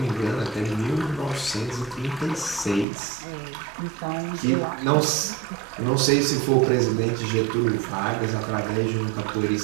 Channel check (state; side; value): drops out; left; at 2.9 s